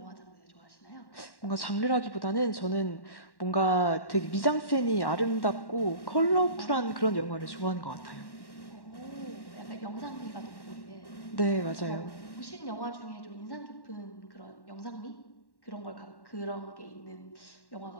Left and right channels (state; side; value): late; right; 1.1 ms